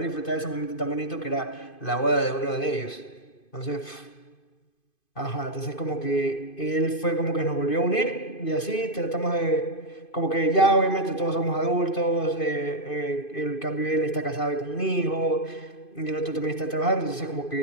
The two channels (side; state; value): right; late; 2.5 ms